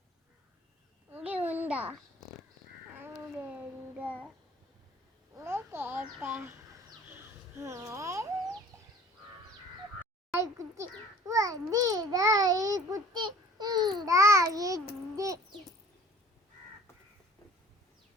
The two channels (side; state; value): both; normal; correlation 0.50